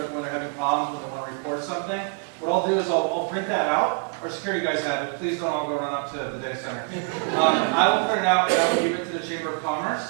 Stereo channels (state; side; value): quieter; left; 36.8 dB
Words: when they're having problems, when they want to report something. What I'll do is I'll print that out. Our security guys have it. Please don't all go run up to the data center. I will print it out and I will give it to the Chamber of Commerce.